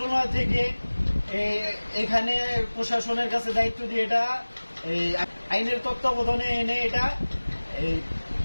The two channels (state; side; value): inverted; both; correlation -1.00